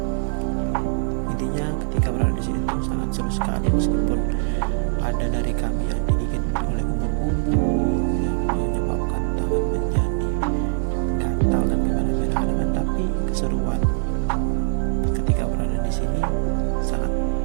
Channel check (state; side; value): silent; left; digital silence